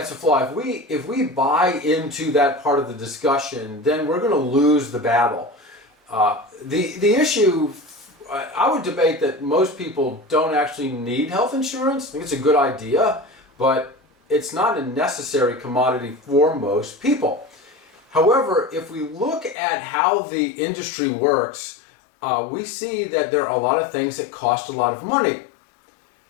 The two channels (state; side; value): drops out; right; at 19.6 s